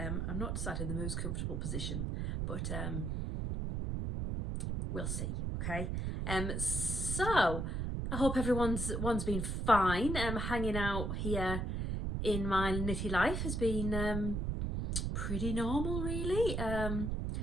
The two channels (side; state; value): right; noise; rumble, 1 dB below the sound